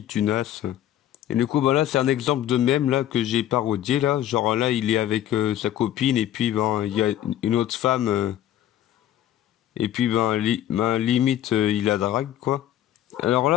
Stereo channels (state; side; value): quieter; right; 12.1 dB